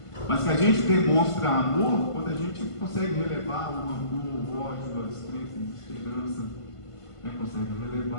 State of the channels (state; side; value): late; right; 1.5 ms